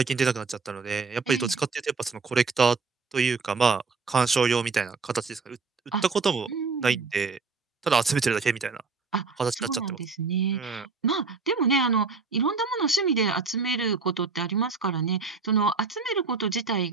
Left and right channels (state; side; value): quieter; left; 4.6 dB